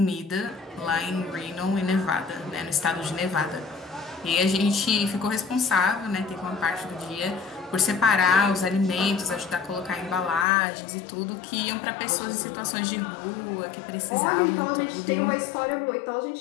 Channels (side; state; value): right; drops out; at 10.5 s